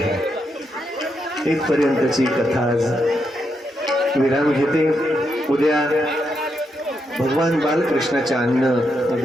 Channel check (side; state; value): both; normal; correlation 0.81